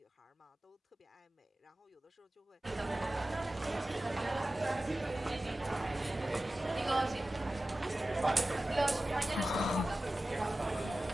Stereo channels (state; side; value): normal; both; correlation 0.96